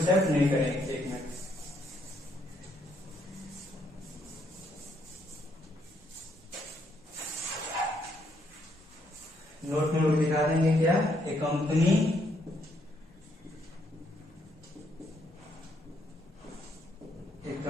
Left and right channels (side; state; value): both; normal; correlation 0.73